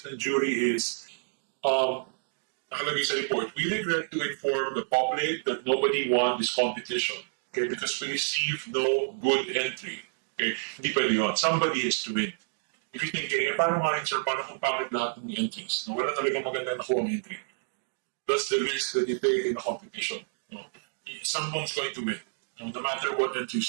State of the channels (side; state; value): left; silent; digital silence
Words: ng jury is, nakalagay sa report, we regret to inform the public that nobody won this competition. Okay, because we received no good entry. Okay, hindi pwede yun. Somebody has to win. If you're thinking, paano nga rin, sir, paano kung pangit lahat ng entries? No? Wala talaga maganda na kuha ang entry. That's the risk that you take in a competition. No? Someone's going to win. No matter what